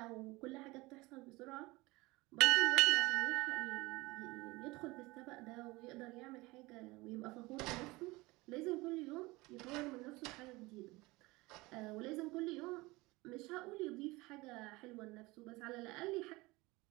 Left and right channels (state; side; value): quieter; left; 22.1 dB